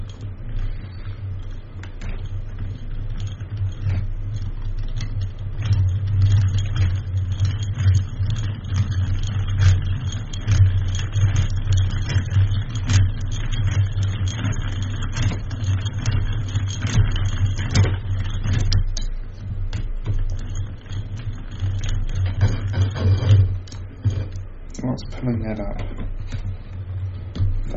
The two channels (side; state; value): both; identical; correlation 1.00